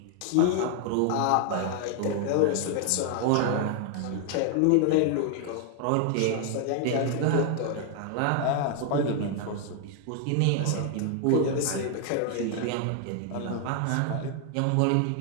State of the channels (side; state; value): both; different; correlation 0.00